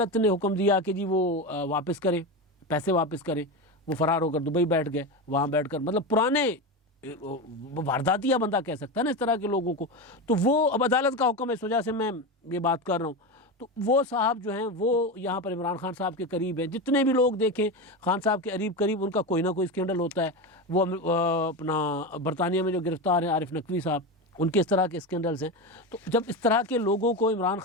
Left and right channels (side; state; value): both; normal; correlation 0.19